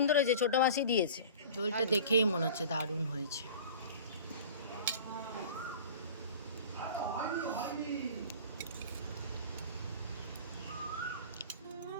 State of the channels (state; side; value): inverted; both; correlation -0.40